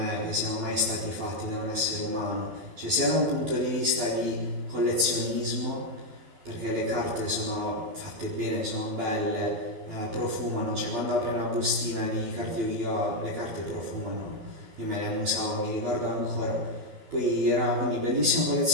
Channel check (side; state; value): left; late; 12 ms